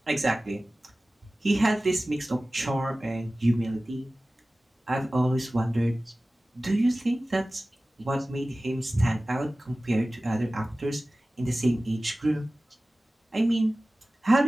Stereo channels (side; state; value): both; normal; correlation 0.97